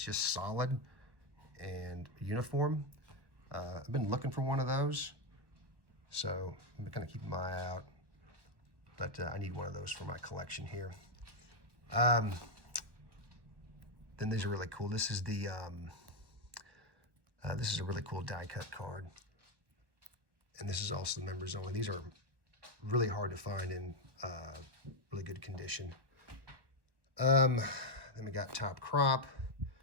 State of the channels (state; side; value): late; left; 1.2 ms